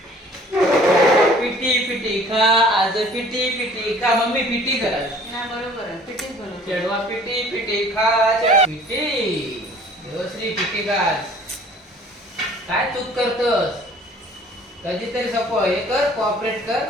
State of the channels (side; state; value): both; normal; correlation 0.52